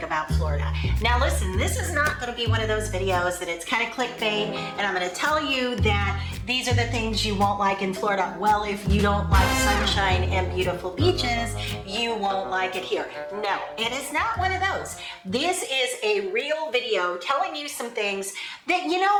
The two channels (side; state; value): both; identical; correlation 1.00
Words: about Florida. Now listen, this is not going to be one of those videos that it's kind of clickbait and I'm going to tell you that these are the things you won't like in Florida. Well, if you don't like sunshine and beautiful beaches, you won't like it here. No, it is not one of those. This is a real video telling you some things that,